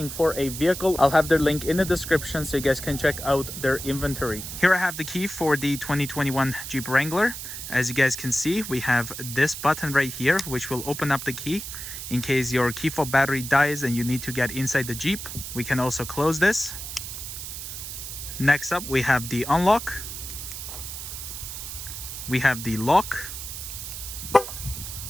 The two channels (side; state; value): right; noise; hiss, 8 dB below the sound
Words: for a vehicle, I'll have their link in the description so you guys can check out their inventory. Here I have the key for the 2021 Jeep Wrangler. As you guys can see, we have this button right here which will open up the key in case your key fob battery dies and you need to get inside the Jeep. We can also close this. Next up, we have the unlock. We have the lock,